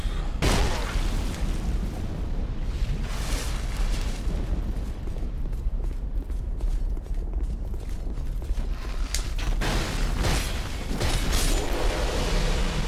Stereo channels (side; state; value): both; identical; correlation 1.00